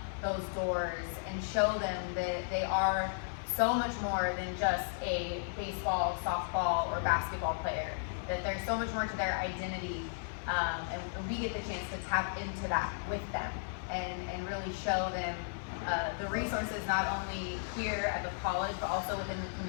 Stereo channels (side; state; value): right; silent; 55 dB below the other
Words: those doors and show them that they are so much more than just a baseball, softball, or basketball player. That there's so much more to their identity, and we get the chance to tap into that with them and really show them the resources not only here at the college but also within the